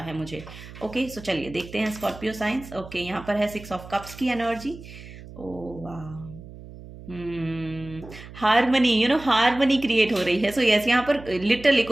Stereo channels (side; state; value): right; noise; hum, 16 dB below the sound